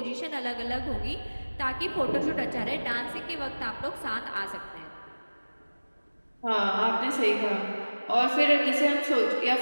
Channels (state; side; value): inverted; both; correlation -1.00